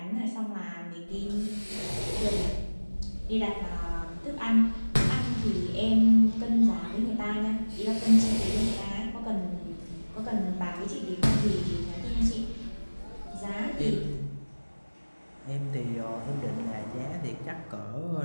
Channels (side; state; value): both; inverted; correlation -1.00